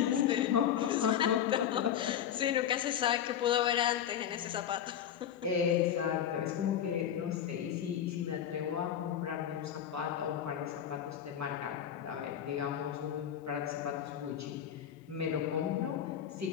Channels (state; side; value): quieter; right; 9.6 dB